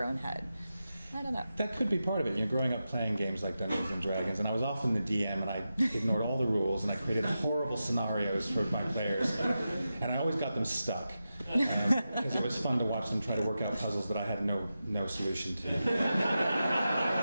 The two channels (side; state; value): both; inverted; correlation -0.91